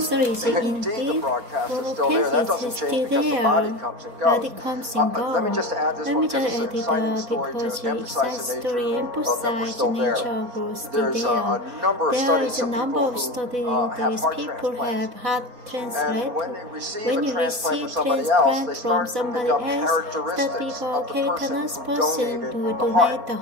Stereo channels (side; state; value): left; late; 4.1 ms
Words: indeed the broadcast is still there. That doesn't change because the body comes and goes. Let me just add this one because it's an exciting story to emphasize the nature of growth. There's a number of studies of people have heart transplant. When you receive transplant from somebody else, that becomes a cancerous person to donate the